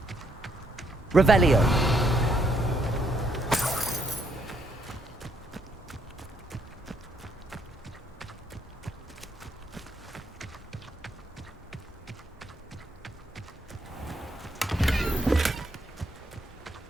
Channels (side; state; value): both; normal; correlation 0.73